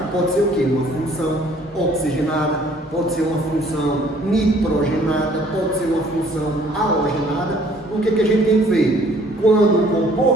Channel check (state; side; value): normal; both; correlation 0.58